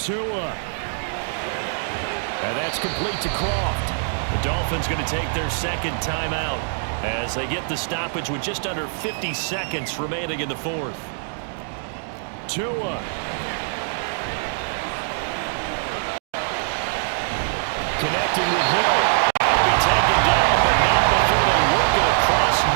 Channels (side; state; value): left; silent; digital silence